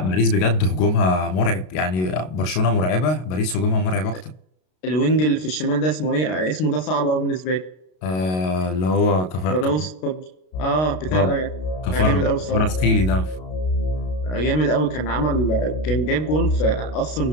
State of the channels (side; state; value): right; late; 32 ms